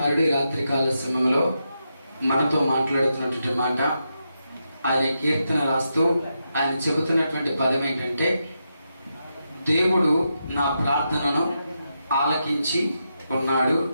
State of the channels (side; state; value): both; inverted; correlation -0.85